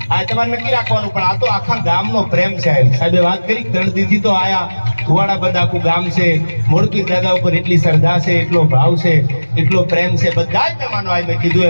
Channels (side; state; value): both; inverted; correlation -1.00